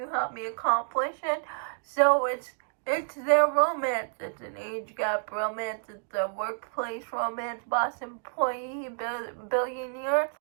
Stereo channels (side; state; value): left; silent; digital silence